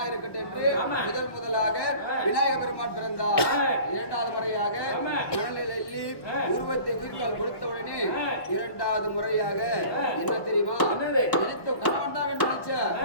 இருக்கட்டும் என்று முதலாக விநாயக பெருமான் பிறந்தார். இரண்டாவது முறையாக மணலில் எள்ளி உருவத்தை உயிர்கால் கொடுத்த உடனே இரண்டாவது முறையாக என்ன தெரியுமா? நினைத்த கணவன் தான் வேண்டும் நினைச்ச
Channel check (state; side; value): late; right; 1.2 ms